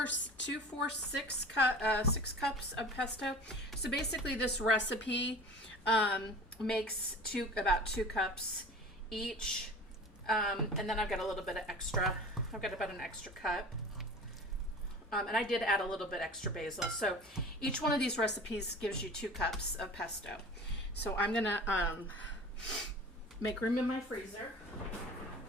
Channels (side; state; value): both; normal; correlation 0.39